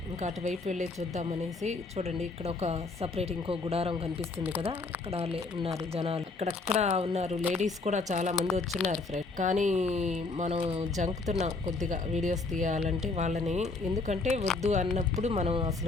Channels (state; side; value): quieter; right; 3.7 dB